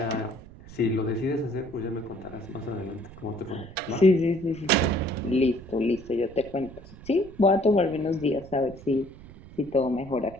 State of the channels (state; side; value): noise; right; rumble, 18 dB below the sound